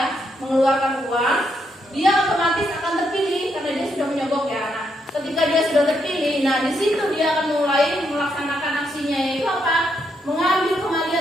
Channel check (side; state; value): both; normal; correlation 0.78